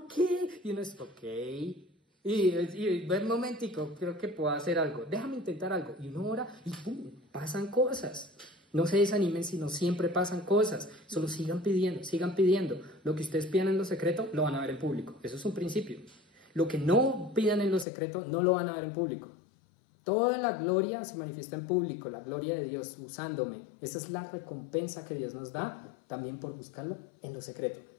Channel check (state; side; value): drops out; right; at 17.9 s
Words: qué? Y uno es, ok, y ver un momentico, creo que puedo hacer algo, déjame intentar algo. Y uno ora y ¡pum!, pasan cosas. No se desanimen, sino siempre pasan cosas. Solo sigan pidiendo. Lo que ustedes pidan en lo secreto, lo van a ver en público. Eso es un principio. Lo que no pidan en lo secreto, no lo van a ver en público. Toda la gloria se manifiesta en público, la gloria de Dios usándome. Esa es la recompensa que Dios nos da, también por buscarlo en lo secreto.